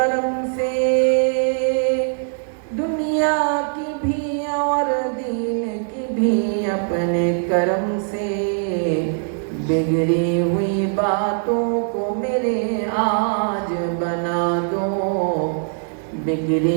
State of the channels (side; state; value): left; silent; digital silence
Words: سے دنیا کی بھی اور دین کی بھی اپنے کرم سے बिगड़ी हुई बातों को मेरे आज बना दो